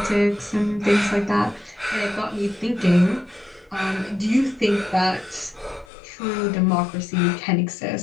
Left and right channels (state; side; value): drops out; right; at 5.9 s